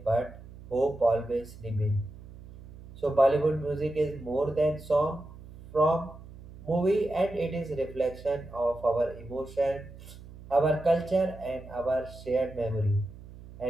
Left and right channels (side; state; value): right; noise; hum, 17 dB below the sound